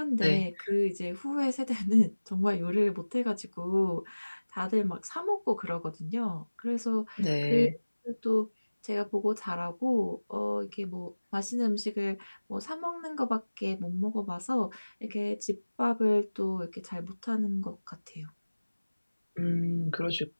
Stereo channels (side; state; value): both; inverted; correlation -1.00